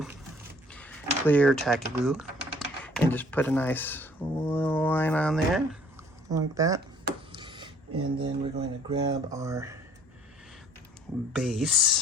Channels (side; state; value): both; normal; correlation 0.56